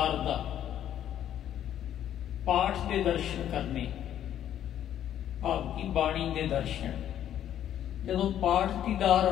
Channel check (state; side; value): quieter; right; 10.8 dB